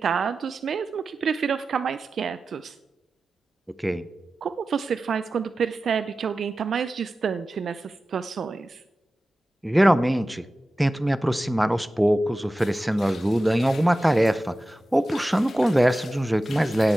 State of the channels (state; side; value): normal; both; correlation 0.95